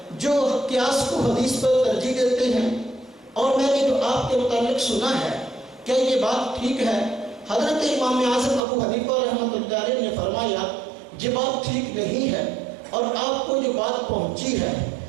جو قیاس کو حدیث پر ترجیح دیتے ہیں، اور میں نے جو آپ کے متعلق سنا ہے کیا یہ بات ٹھیک ہے؟ حضرت امام اعظم ابو حنیفہ رحمۃ اللہ علیہ نے فرمایا یہ بات ٹھیک نہیں ہے، اور آپ کو جو بات پہنچی ہے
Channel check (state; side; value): drops out; left; at 8.6 s